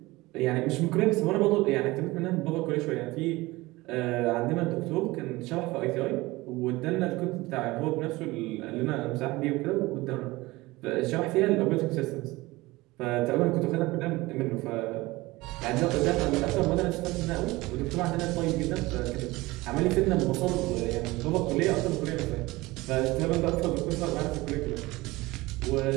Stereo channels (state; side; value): quieter; left; 20.6 dB